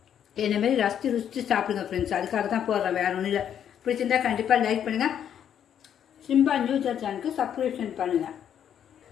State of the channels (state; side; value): quieter; right; 9.2 dB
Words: என்னமாரி ருசித்து சாப்பிடுங்க ஃப்ரெண்ட்ஸ். அதுக்காக தான் போடுறேன், வேறு ஒன்றும் இல்லை. பிடிச்சிருந்தா கண்டிப்பாக லைக் பண்ணுங்கள். சிம்பா நியூஸ் சேனலுக்கு சப்ஸ்கிரிப்ஷன் பண்ணுங்கள்.